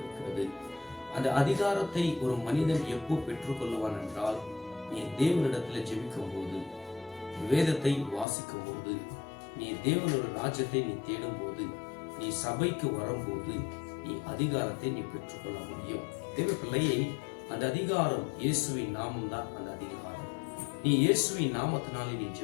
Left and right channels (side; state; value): right; drops out; at 8.2 s